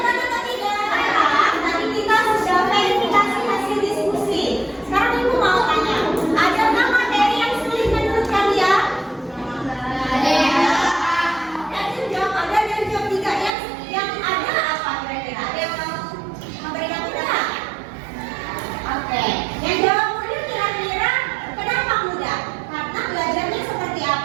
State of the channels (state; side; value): drops out; left; at 13.5 s